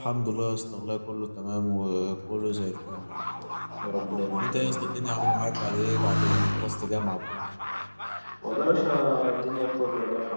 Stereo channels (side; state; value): both; inverted; correlation -1.00